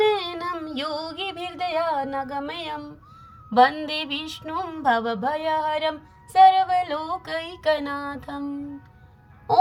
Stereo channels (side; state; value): both; identical; correlation 1.00